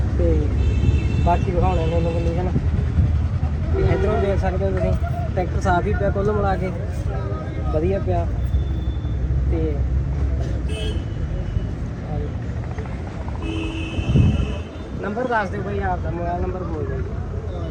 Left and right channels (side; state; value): both; identical; correlation 1.00